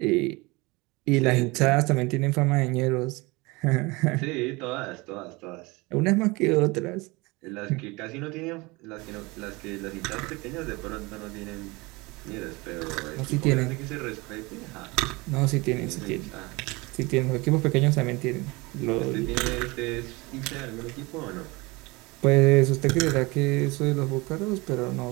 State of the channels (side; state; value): left; quieter; 24.4 dB